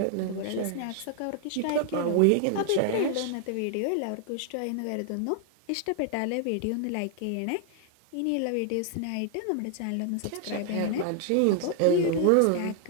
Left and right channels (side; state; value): both; different; correlation 0.00